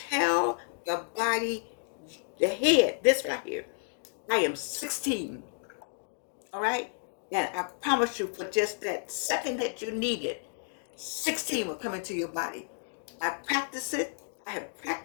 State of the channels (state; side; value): silent; right; digital silence